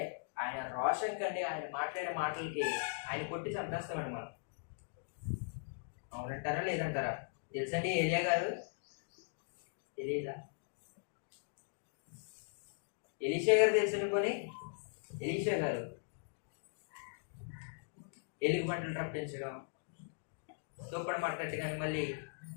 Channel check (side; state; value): right; silent; digital silence